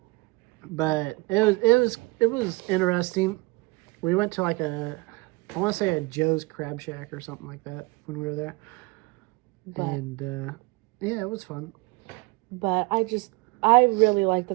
But it was interesting. We went to like I want to say a Joe's Crab Shack or something like that when we were there. But, And yeah, it was fun. But I really like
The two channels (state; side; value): quieter; left; 25.6 dB